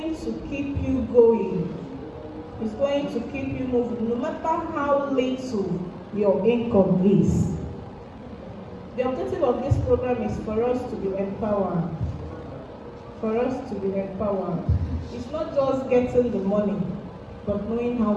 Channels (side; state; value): both; identical; correlation 1.00